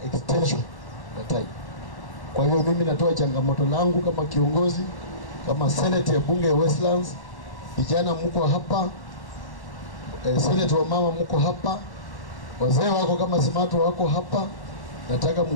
extension ya time. Kwa hiyo mimi natoa changamoto langu kama kiongozi, kama Senate ya bunge ya Westlands, vijana mko hapa, Senate wa mama mko hapa, wazee wako kama Smart wako hapa, nataka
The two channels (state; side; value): late; right; 1.1 ms